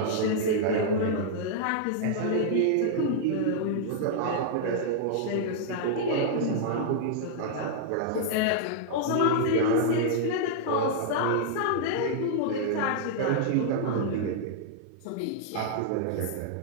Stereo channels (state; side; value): different; both; correlation -0.01